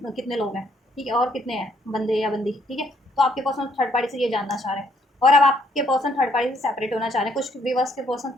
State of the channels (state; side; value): normal; both; correlation 0.69